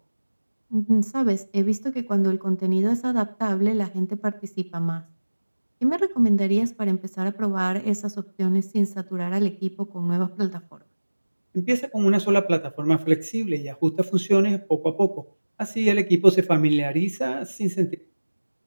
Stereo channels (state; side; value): inverted; both; correlation -1.00